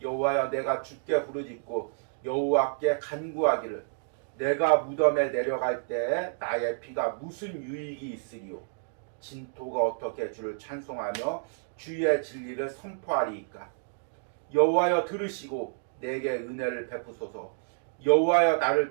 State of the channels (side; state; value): left; silent; digital silence